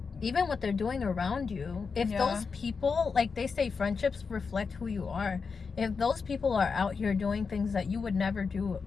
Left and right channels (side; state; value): right; quieter; 5.2 dB